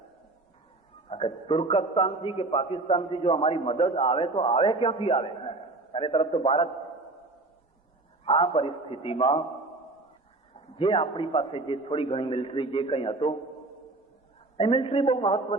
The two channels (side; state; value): left; quieter; 3.1 dB